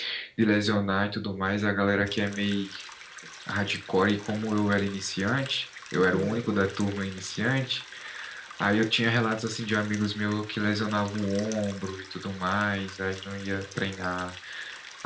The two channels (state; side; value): identical; both; correlation 1.00